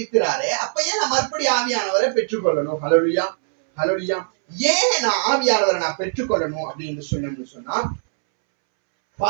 அப்ப ஏன் நான் மறுபடியும் ஆவியானவரை பெற்றுக்கொள்ளணும்? ஹல்லேலூயா, ஹல்லேலூயா. ஏன் நான் ஆவியானவரை நான் பெற்றுக்கொள்ளணும் அப்படின்னு சொன்னா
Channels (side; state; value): left; silent; 65 dB below the other